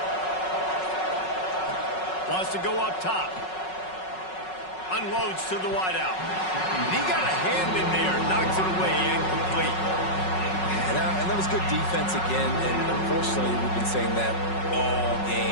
Wants to go up top. Unloads to the wideout. He got a hand in there. Knocks it away. Incomplete. And that was good defense again. And unfortunately, we've been saying that all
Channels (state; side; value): late; right; 5.4 ms